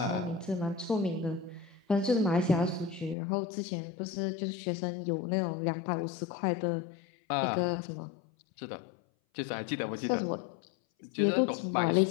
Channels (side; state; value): right; drops out; at 3.2 s